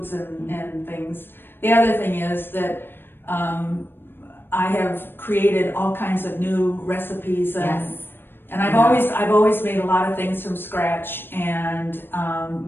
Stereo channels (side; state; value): right; late; 0.10 ms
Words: and things. The other thing is that I have created all kinds of new recipes, Yes. and I've always made a lot of things from scratch, and